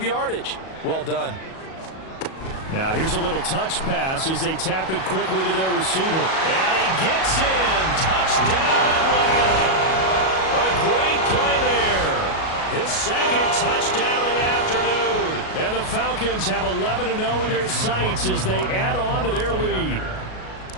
yardage. Well done. Now here's a little touch pass as they tap it quickly to their receiver. And he gets in. Touchdown, Atlanta. A great play there. His second touchdown of the afternoon. And the Falcons have 11-0 in their sights as they add on to their lead.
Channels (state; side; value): late; right; 37 ms